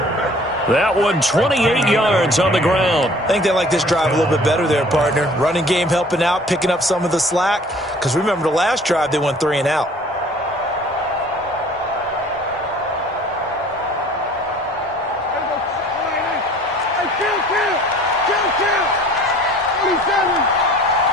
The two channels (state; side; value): normal; both; correlation 0.51